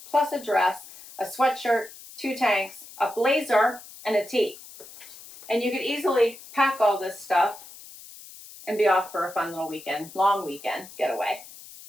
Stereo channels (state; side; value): noise; left; hiss, 17 dB below the sound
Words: plus a dress, a sweatshirt, 2 tanks, a blazer, and a tee. And you could easily pack all this stuff and be off for a fun little weekend, long weekend getaway.